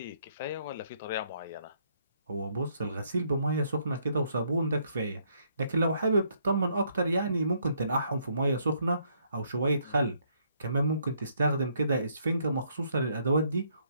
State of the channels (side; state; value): both; inverted; correlation -0.70